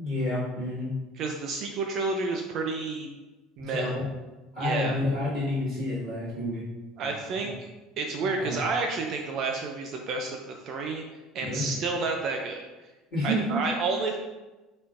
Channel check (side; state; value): both; normal; correlation 0.46